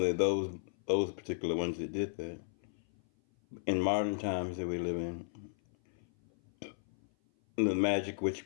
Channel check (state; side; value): silent; right; 55 dB below the other